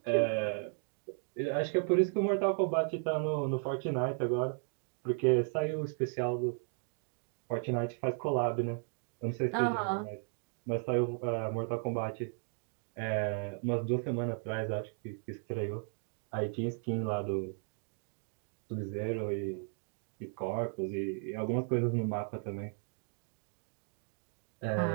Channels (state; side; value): silent; left; 54 dB below the other